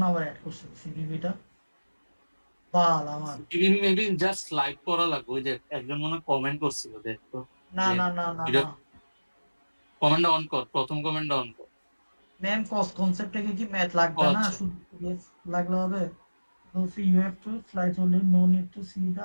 আবার অ্যাড করছে সিভিবিটা? বাল আমার। সিভিবি মেবি জাস্ট লাইক করা লাগবে। ওই যে একজন মনে কমেন্ট করছিল দেখতো না যে না না না এটা না কমেন্টটা অন কর, প্রথম কমেন্টটা অন কর। ম্যাম কস্ট কনসেপ্ট থেকে কি ম্যাথ ও লাগবে না, আচ্ছা শুধু yes লাগলে হবে? So you have to flight only, no need to see the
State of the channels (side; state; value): both; inverted; correlation -1.00